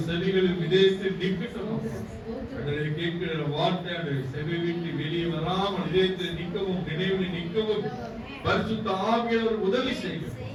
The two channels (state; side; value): identical; both; correlation 1.00